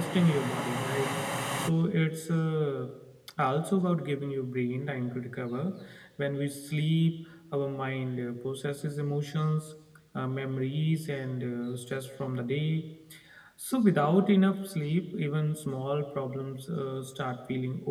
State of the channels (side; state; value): both; identical; correlation 1.00